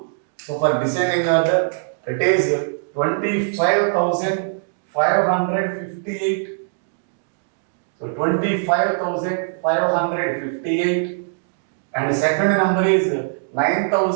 So for descending order, it is 25,558. So 25,558. And the second number is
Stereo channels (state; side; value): silent; left; digital silence